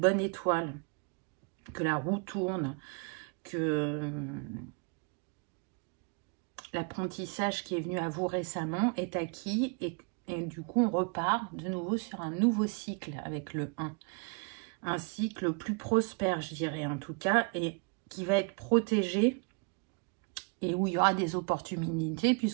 étoile, que la roue tourne, que l'apprentissage qui est venu à vous récemment est acquis et du coup on repart de nouveau sur un nouveau cycle avec le 1. Un cycle plus prospère, je dirais en tout cas, et qui va être protégé et où il y aura des opportunités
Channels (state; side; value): quieter; left; 36.2 dB